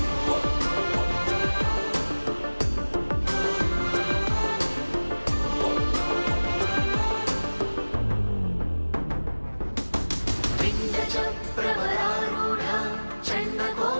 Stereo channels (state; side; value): inverted; both; correlation -1.00